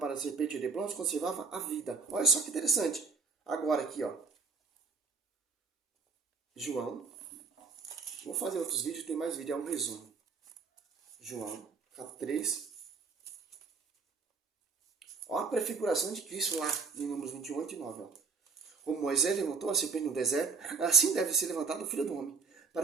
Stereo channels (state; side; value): quieter; left; 5.0 dB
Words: a serpente de bronze, conservava a vida. Olha só que interessante. Agora aqui, ó. João. Vou fazer outros vídeos, tem mais vídeo, é um resumo. João, capítulo 3. Olha a prefiguração de Cristo lá, em Números 21:8-9. Como Moisés levantou a serpente no deserto, assim deve ser levantado o Filho do Homem,